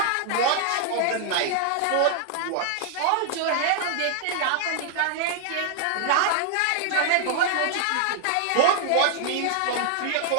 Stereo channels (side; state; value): both; different; correlation 0.00